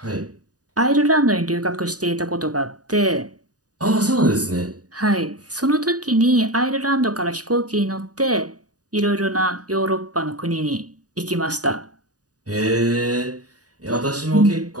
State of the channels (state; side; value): late; left; 0.68 ms